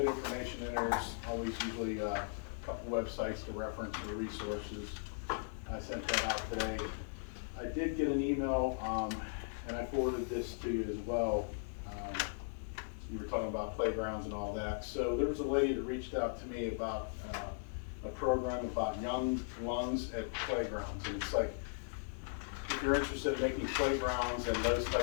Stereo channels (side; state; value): right; silent; digital silence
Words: information in there. There's always usually a couple websites to reference for resources. I sent that out today. I did get an email, and I forwarded this to you as well. You were talking about playgrounds and all that. So there was a lady that reached out to me about a program about young lungs at playgrounds. And it's like, if you're interested in making playgrounds and those